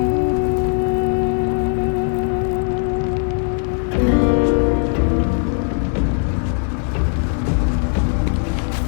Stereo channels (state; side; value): silent; right; 56 dB below the other